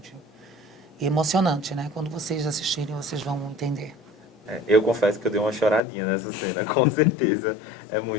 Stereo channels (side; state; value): right; drops out; at 5.8 s